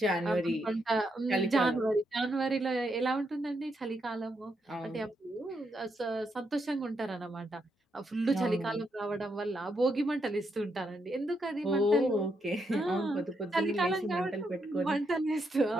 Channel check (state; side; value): normal; both; correlation 0.80